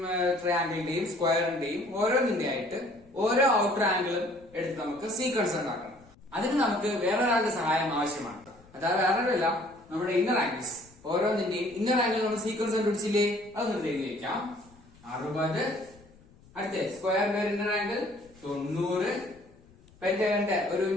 ട്രയാംഗിളിന്റെയും സ്ക്വയറിന്റെയും ഓരോന്നിന്റെ ആയിട്ട് ഓരോ ഔട്ടർ ആംഗിളും എടുത്ത് നമുക്ക് സീക്വൻസ് ഉണ്ടാക്കണം. അതിന് നമുക്ക് വേറൊരാളുടെ സഹായം ആവശ്യമാണ്. അതായത് വേറൊരല്ല, നമ്മുടെ ഇന്നർ ആംഗിൾസ് ഓരോന്നിന്റെയും ഇന്നർ ആംഗിൾ നമ്മൾ സീക്വൻസ് കണ്ടുപിടിച്ചില്ലേ, അതൊന്ന് എഴുതി വെക്കാം. 60, അടുത്ത സ്ക്വയറിന്റെ ഒരു ഇന്നർ ആംഗിൾ 90, പെന്റഗണിന്റെ ഒരു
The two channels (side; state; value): left; noise; rumble, 26 dB below the sound